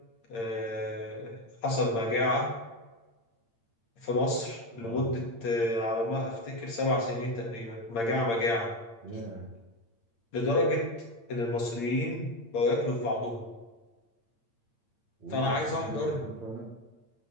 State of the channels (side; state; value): right; late; 8.7 ms